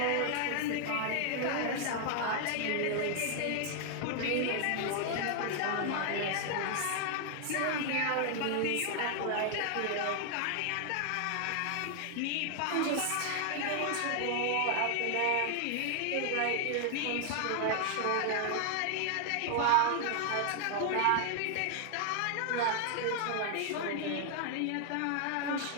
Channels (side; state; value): both; different; correlation 0.00